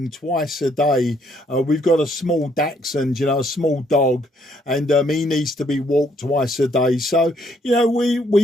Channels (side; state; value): both; normal; correlation 0.69